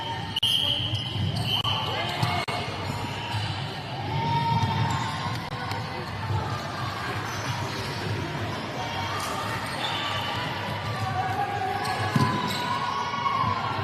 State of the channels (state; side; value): identical; both; correlation 1.00